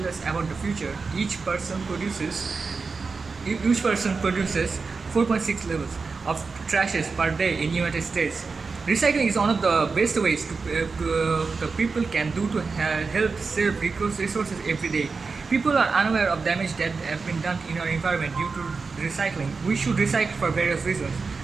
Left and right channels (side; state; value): left; quieter; 4.5 dB